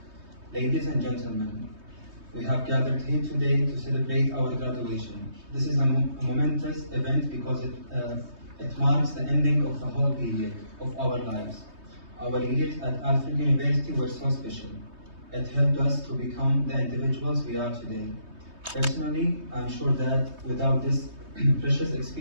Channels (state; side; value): late; left; 3.2 ms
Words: ladies and gentlemen, we have gathered here today to celebrate our graduation. This is a momentous event because it marks the ending of a whole period of our lives. Our years at Alfred University were so special. It helped us to become the individuals we are today. Personally, I'm sure that without this precious